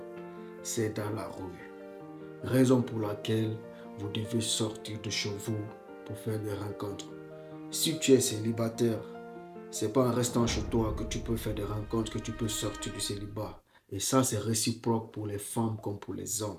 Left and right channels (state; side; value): identical; both; correlation 1.00